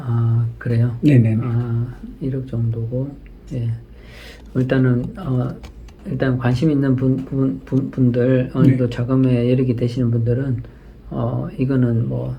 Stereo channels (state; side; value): identical; both; correlation 1.00